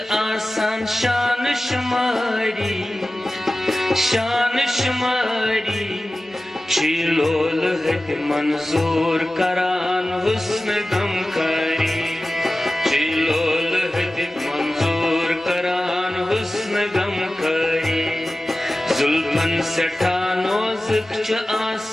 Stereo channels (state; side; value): normal; both; correlation 0.96